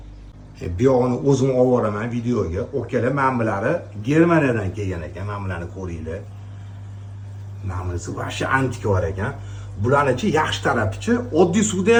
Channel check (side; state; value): both; identical; correlation 1.00